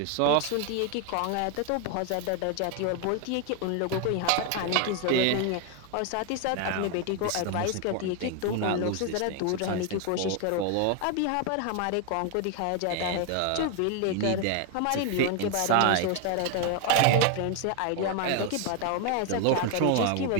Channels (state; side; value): different; both; correlation 0.01